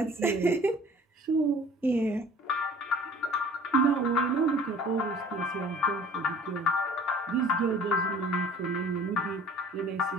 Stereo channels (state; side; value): normal; both; correlation 0.49